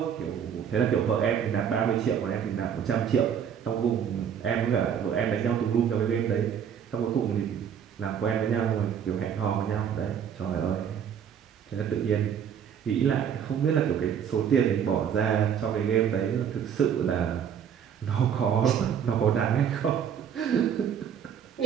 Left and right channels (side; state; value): left; quieter; 8.3 dB